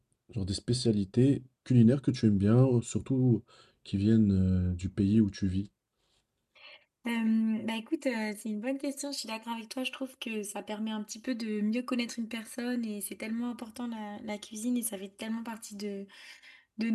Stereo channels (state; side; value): identical; both; correlation 1.00